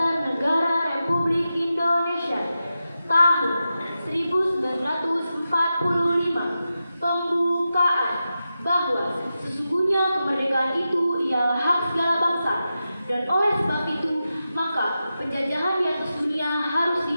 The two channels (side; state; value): both; inverted; correlation -0.91